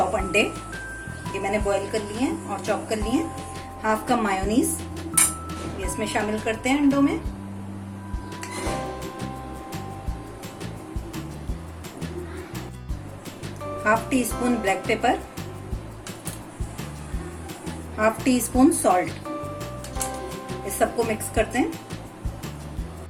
अंडे, ये मैंने बॉईल कर लिए हैं और चॉप कर लिए हैं। हाफ कप मायोनीज ये इसमें शामिल करते हैं अंडों में। Half tea spoon black pepper, half tea spoon salt, इस सबको मिक्स करते हैं।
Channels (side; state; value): both; identical; correlation 1.00